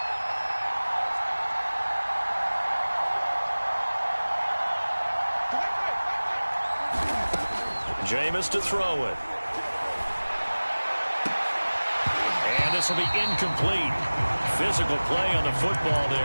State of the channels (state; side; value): inverted; both; correlation -1.00